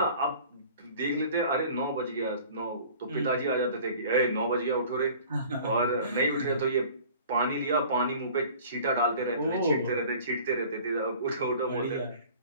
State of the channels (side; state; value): both; inverted; correlation -0.47